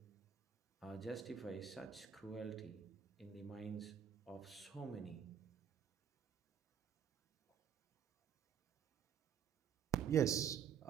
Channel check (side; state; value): left; quieter; 8.0 dB